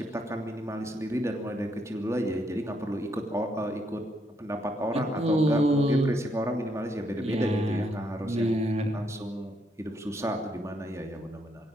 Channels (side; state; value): both; normal; correlation 0.75